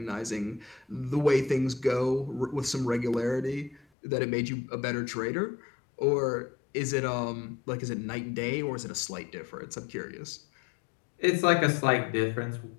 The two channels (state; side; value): drops out; right; at 3.8 s